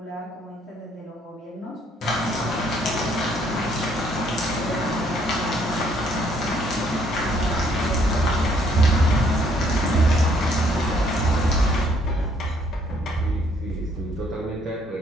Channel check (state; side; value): normal; both; correlation 0.66